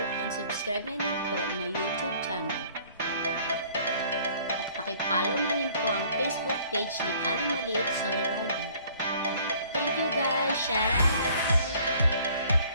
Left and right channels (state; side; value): inverted; both; correlation -0.56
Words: and subscribe na din po my YouTube channel. At pakipollow na rin po ang Facebook page ni Aling Maliit Solo Rider. Thank you guys! Shout out!